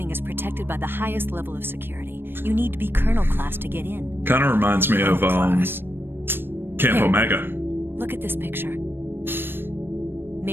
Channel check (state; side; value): late; left; 0.10 ms